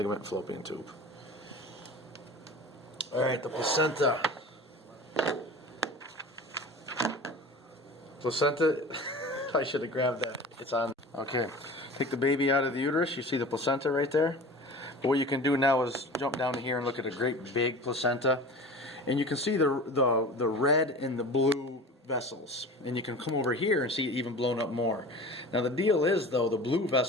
fallopian tube. Alright, the placenta. Placenta, I should have grabbed that. It's on. Okay. Take the baby out of the uterus, you see the placenta right there. But what you can do now is jump down to here and look at a great big placenta. And you can see the red and the blue vessels. And you can come over here and see it even blown up more. Now the deal is though, the blue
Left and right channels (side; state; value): both; normal; correlation 0.37